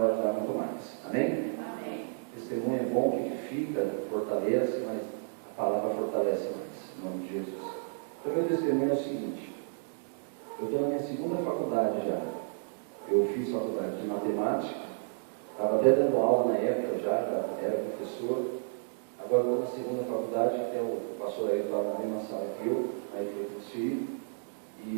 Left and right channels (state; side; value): silent; left; digital silence